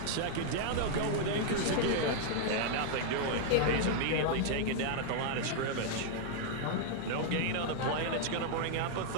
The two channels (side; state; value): both; different; correlation -0.01